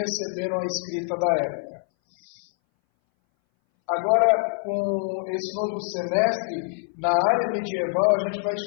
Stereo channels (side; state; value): right; silent; 60 dB below the other